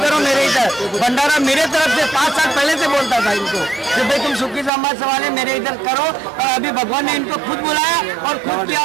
मेरे इधर भंडारा मेरे तरफ से 5 साल पहले से बोलता था इनको कि भाई तुम सुखी समाज वाले मेरे इधर करो और अभी भगवान ने इनको खुद बुलाया और खुद किया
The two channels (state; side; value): drops out; left; at 4.7 s